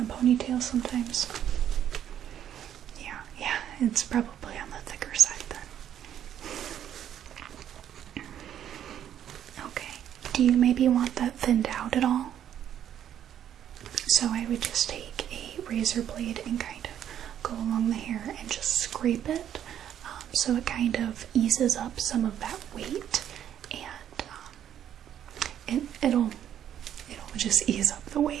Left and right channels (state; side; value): quieter; left; 10.2 dB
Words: ponytail sometimes? Yeah, it's probably on the thicker side then. Okay, do you maybe want that thinned out at all? So I would just take a razor blade and kind of go along the hair and just scrape it, so it kind of eases up some of that weight, and it'll just ease up the